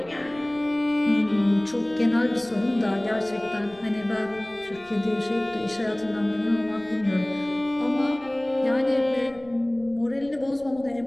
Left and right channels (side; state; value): left; noise; rumble, 26 dB below the sound